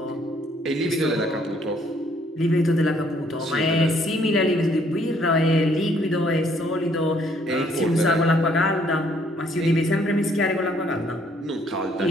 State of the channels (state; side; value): normal; both; correlation 0.65